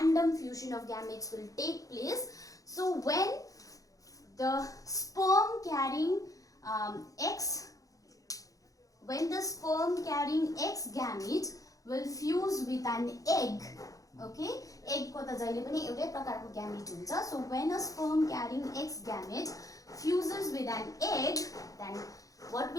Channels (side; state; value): right; late; 0.17 ms